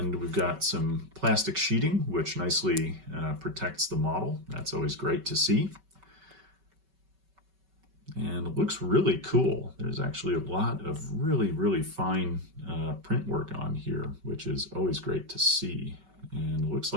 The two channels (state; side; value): late; left; 5.2 ms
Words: we've got some plastic sheeting, which nicely protects the model. That's always great to see. And it looks really cool. There's actually a lot of really fine print work on here, which is always great to see. And it looks